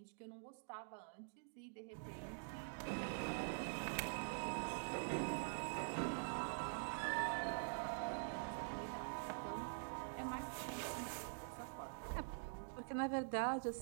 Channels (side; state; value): left; silent; digital silence